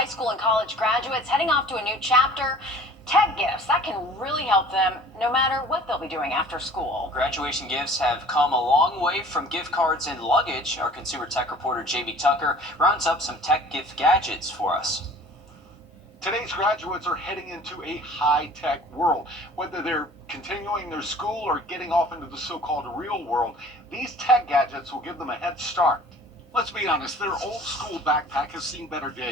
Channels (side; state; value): both; normal; correlation 0.48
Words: school and college graduates heading off to a new chapter, tech gifts, that can really help them no matter what they'll be doing after school. Graduation gifts have come a long way from gift cards and luggage. Our consumer tech reporter Jamie Tucker rounds up some tech gift gadgets for us. Today's graduates are heading into a high-tech world. Whether they're continuing their school or getting off into the so-called real world, these tech gadgets will give them a head start. Let's be honest, their old-school backpack has seen better